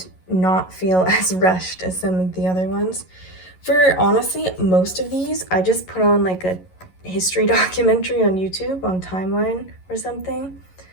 not feel as rushed as some of the other ones. For honestly, most of these, I just put on like a history documentary on YouTube on Timeline or something.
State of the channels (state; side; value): late; right; 11 ms